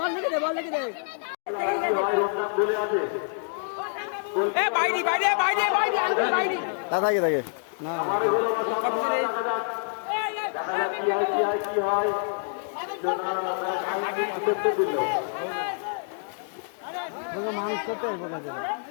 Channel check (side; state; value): right; silent; digital silence